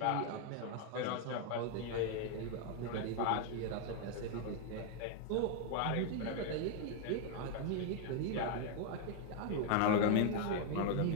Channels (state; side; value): different; both; correlation 0.00